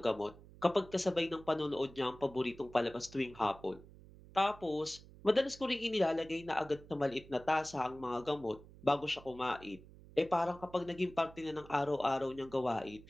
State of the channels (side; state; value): right; noise; hum, 20 dB below the sound